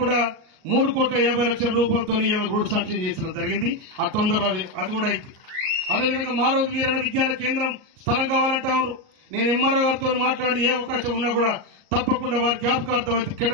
కూడా 3,50,00,000 రూపాయలతో రోడ్డు శాంక్షన్ చేసిన జరిగింది. ఆ తొందరలో అది కూడా అయింది. అదేవిధంగా మారోజు వీరన్న విజ్ఞాన కేంద్రం స్థలం కావాలంటారు. నేను ఎంఆర్ఓ గారితో మాట్లాడి ఏ అవకాశం ఉన్నా కూడా తప్పకుండా వారి జ్ఞాపకార్థం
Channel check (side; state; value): left; late; 38 ms